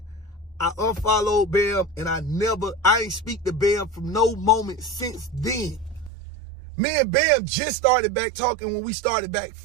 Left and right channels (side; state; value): left; drops out; at 6.1 s